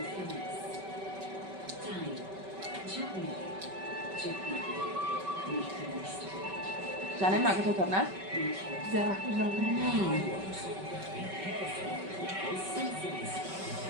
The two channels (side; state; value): left; late; 5.2 ms